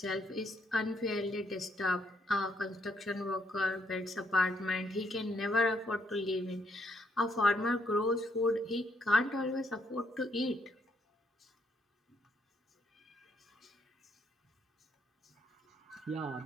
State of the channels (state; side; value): normal; both; correlation 0.73